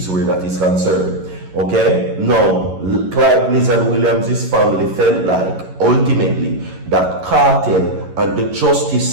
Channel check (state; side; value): late; left; 11 ms